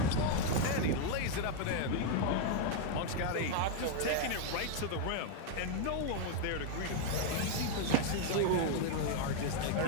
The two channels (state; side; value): different; both; correlation 0.00